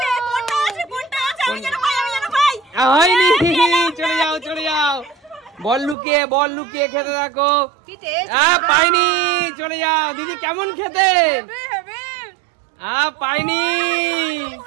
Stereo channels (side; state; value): left; drops out; at 6.0 s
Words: হয়নি, চলে যাও চলে যাও, বল লুকিয়ে খেতে থাকো। পাইনি, চলে যাও দিদি। কেমন খেতে? পাইনি,